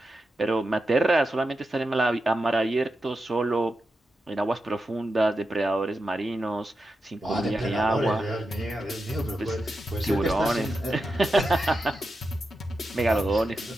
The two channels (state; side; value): normal; both; correlation 0.89